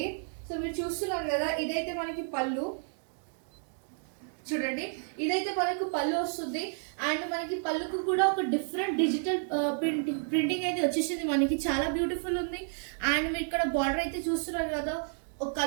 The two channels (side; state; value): left; silent; 57 dB below the other